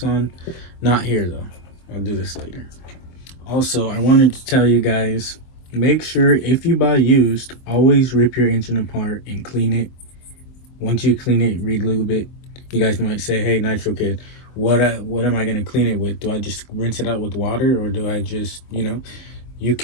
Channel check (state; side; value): late; right; 24 ms